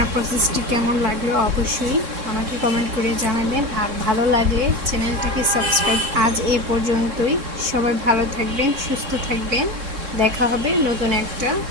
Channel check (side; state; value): left; late; 3.6 ms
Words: প্রসেসটি কেমন লাগলো অবশ্যই আমাকে কমেন্ট করে জানাবেন। আর ভালো লাগলে চ্যানেলটাকে সাবস্ক্রাইব। আজ এই পর্যন্তই। সবাই ভালো থাকবেন, সুস্থ থাকবেন। দেখা হবে নতুন একটা